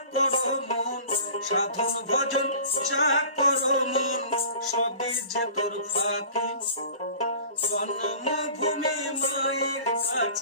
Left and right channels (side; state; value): both; inverted; correlation -0.42